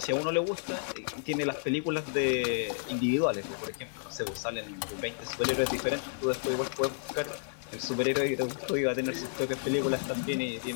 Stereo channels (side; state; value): right; silent; digital silence